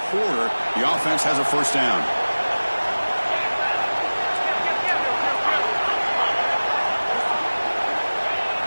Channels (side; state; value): both; inverted; correlation -1.00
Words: quarter. The offense has a first down.